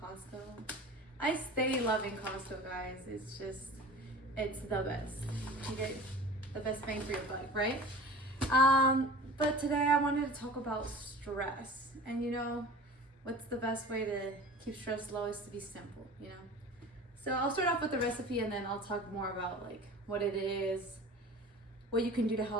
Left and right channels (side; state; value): both; normal; correlation 0.39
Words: I stay loving Costco, guys. It's the best. You get the best bang for your buck, right? But today I wanted to talk about stress. And you know, what's the best way to keep stress low is to be simple, you know? So I'll start off with the recipe and then I'll talk more about like what it is, what you can do to